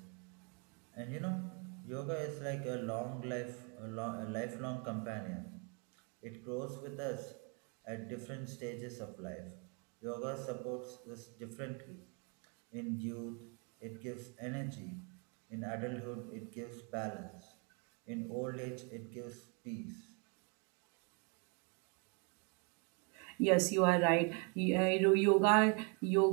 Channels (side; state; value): left; quieter; 34.8 dB